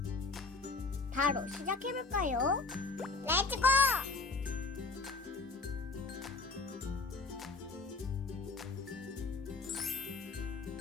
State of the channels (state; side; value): quieter; right; 3.9 dB